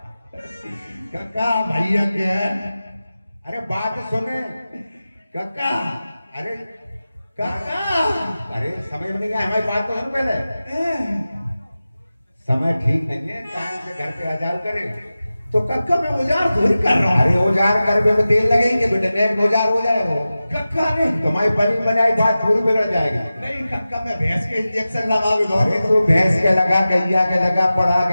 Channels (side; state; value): both; inverted; correlation -0.95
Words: कक्का भैया क्या है? अरे बात सुने कक्का अरे कक्का अरे समझ में नहीं आया, हमारी बात तो सुन पहले। समय ठीक नहीं है, टाइम से घर पे आ जाओ करे। तो कक्का मैं औजार थोड़ी कर रहा हूँ। अरे औजार करने में तेल लगेंगे बेटे, नेक औजार हो जाए वो। कक्का नहीं तुम्हारी बनी बनाई बात पूरी बिगड़ जाएगी। नहीं कक्का मैं भैंस के इंजेक्शन लगा भी अरे तो भैंस के लगा, गैया के लगा, पढ़ा